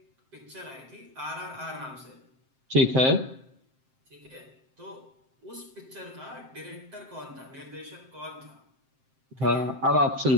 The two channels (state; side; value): late; left; 7.6 ms